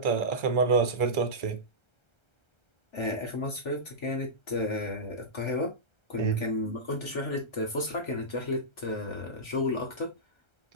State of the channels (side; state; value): right; late; 1.3 ms